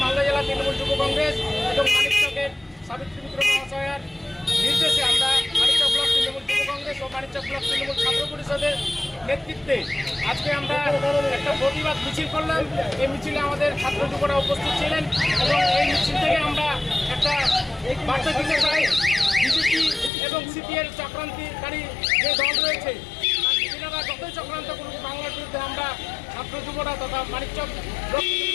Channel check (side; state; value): right; drops out; at 20.1 s